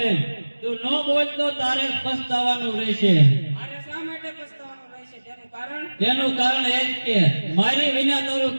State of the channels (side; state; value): both; inverted; correlation -1.00